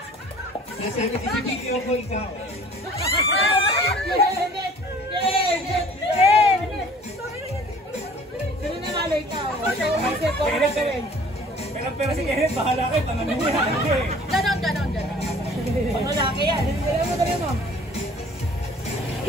Nasa video ko ikaw. Pero si Kenneth, bahala kayo, tanganin niya. Ganon. Pag malaki yan,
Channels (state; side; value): normal; both; correlation 0.50